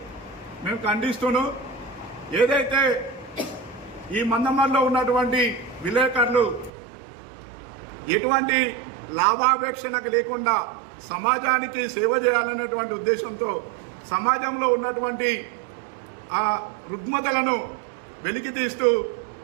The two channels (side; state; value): left; drops out; at 6.7 s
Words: మేము ఖండిస్తూను, ఏదైతే ఈ మందమరిలో ఉన్నటువంటి విలేకరులు ఎటువంటి లాభాపేక్షణకు లేకుండా సమాజానికి సేవ చేయాలనేటువంటి ఉద్దేశంతో సమాజంలో ఉన్నటువంటి ఆ రుగ్మతలను వెలికి తీస్తూ